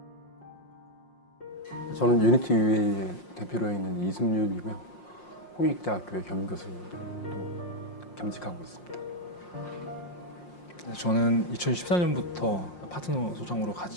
저는 유니티 UA의 대표로 있는 이승윤이고요. 홍익대학교의 겸임교수로 겸직하고 있습니다. 저는 2014년부터 파트너 소장으로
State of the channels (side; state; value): right; late; 5.6 ms